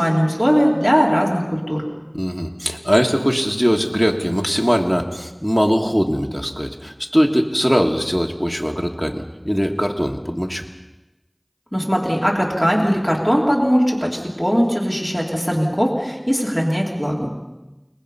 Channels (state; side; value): identical; both; correlation 1.00